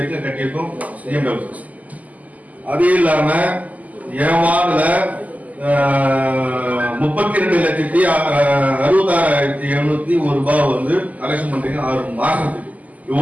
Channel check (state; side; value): late; left; 0.076 ms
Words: கட்டியிருக்கோம் சிஎம்டபிள்யூ. அது இல்லாம ஏவாடுல 32,66,701 ரூபாய் வந்து கலெக்ஷன் பண்றீங்க 6 மாசத்துக்கு.